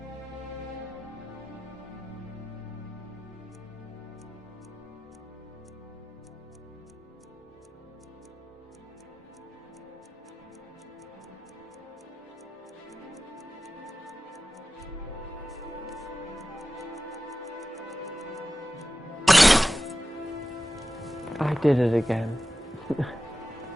I did it again.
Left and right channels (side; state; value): both; normal; correlation 0.94